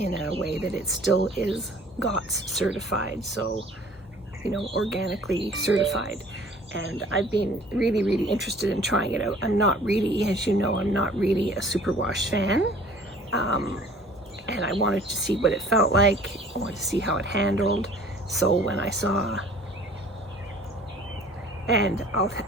a way that it still is GOTS certified, so organically certified. And I've been really, really interested in trying it out. I'm not really, as you know, I'm not really a superwash fan, and I wanted to see what it felt like. I wanted to see how it handled. So when I saw, and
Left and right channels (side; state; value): both; normal; correlation 0.51